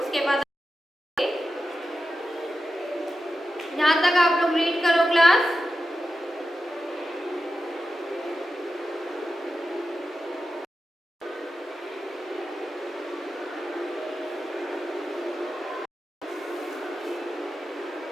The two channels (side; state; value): both; normal; correlation 0.91